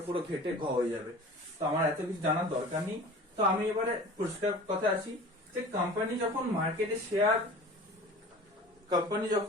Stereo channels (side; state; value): both; normal; correlation 0.40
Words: পুরো ঘেটে হয়ে যাবে। তো আমার এত কিছু জানার দরকার নেই। তো আমি এবারে পরিষ্কার কথা আসি যে কোম্পানি যখন মার্কেটে